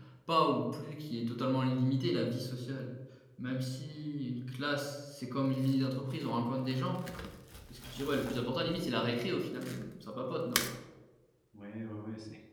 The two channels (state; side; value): identical; both; correlation 1.00